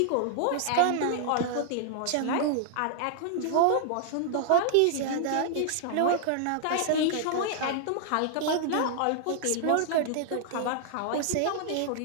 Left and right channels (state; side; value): different; both; correlation -0.01